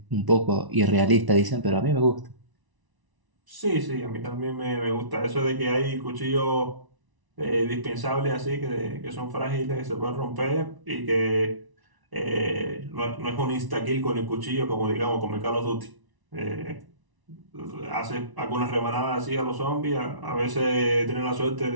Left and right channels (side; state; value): left; late; 1.0 ms